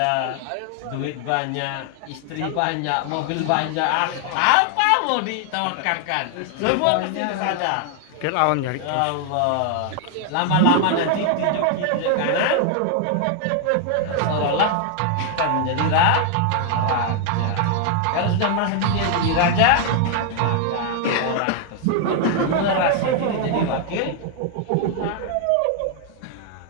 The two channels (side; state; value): both; different; correlation 0.00